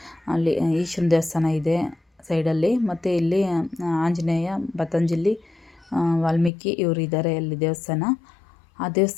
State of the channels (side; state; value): right; drops out; at 6.5 s